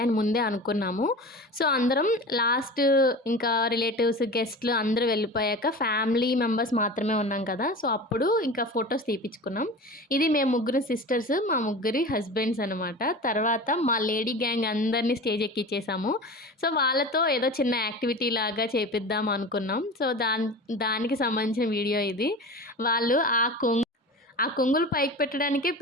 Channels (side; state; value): both; normal; correlation 0.33